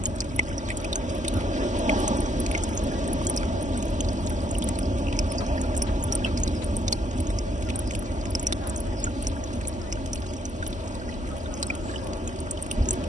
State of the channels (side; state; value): both; normal; correlation 0.70